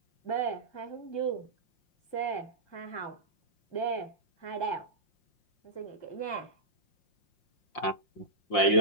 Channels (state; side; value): late; right; 5.7 ms